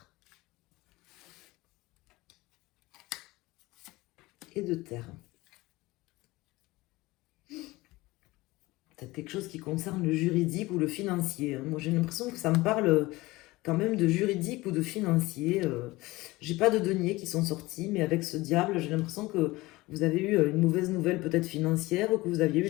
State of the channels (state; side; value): quieter; right; 20.3 dB